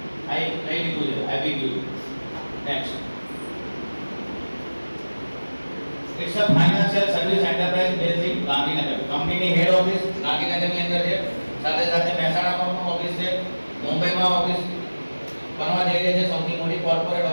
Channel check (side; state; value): both; inverted; correlation -1.00